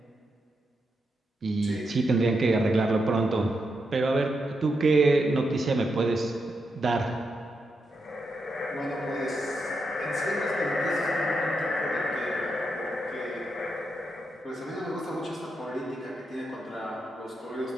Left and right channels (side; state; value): both; normal; correlation 0.84